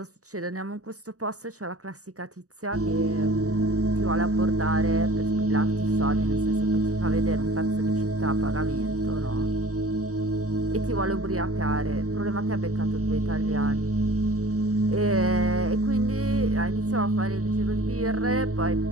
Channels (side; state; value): left; late; 0.66 ms